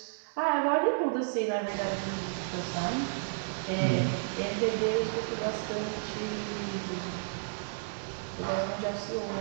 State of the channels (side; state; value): left; silent; digital silence